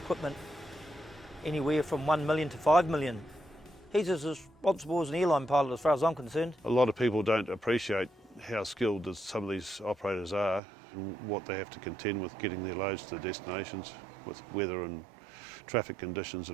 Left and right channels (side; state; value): left; drops out; at 10.6 s